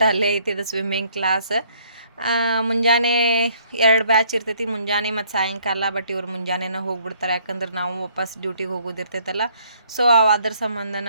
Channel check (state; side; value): inverted; both; correlation -0.64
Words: ಅಲ್ಲೇ ಐತಿ ಇದು ಸ್ವಿಮ್ಮಿಂಗ್ ಕ್ಲಾಸ್. ಮುಂಜಾನೆ 2 ಬ್ಯಾಚ್ ಇರ್ತೈತಿ, ಮುಂಜಾನೆ ಮತ್ತು ಸಾಯಂಕಾಲ. ಬಟ್ ಇವ್ರು ಮುಂಜಾನೆನೇ ಹೋಗ್ಬಿಡ್ತಾರೆ, ಯಾಕಂದ್ರೆ ನಾವು ವಾಪಸ್ ಡ್ಯೂಟಿಗೆ ಹೋಗೋದಿರ್ತೈತಲ್ಲ. ಸೊ ಅದ್ರ